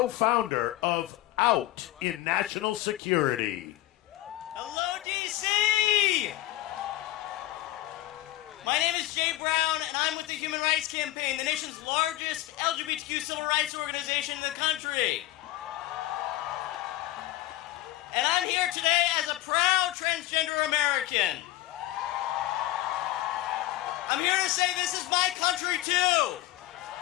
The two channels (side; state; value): right; quieter; 16.0 dB